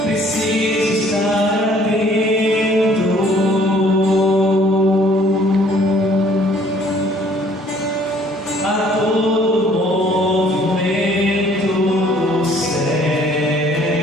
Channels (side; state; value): both; normal; correlation 0.59